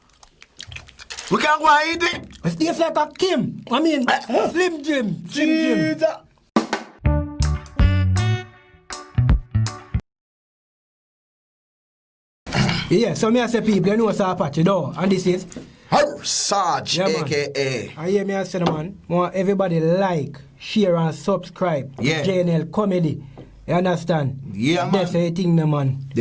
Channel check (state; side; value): identical; both; correlation 1.00